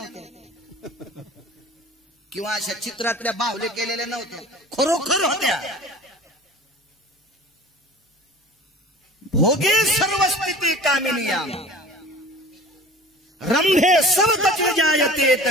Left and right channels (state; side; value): normal; both; correlation 0.41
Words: किंवा अशा चित्रातल्या बाहुले केलेल्या नव्हत्या, खरोखर होत्या. भोगे सर्व स्थिती कामिनिया रंभे सर्वतच जायते